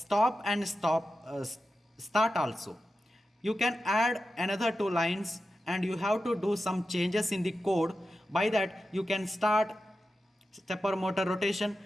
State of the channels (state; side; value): normal; both; correlation 0.92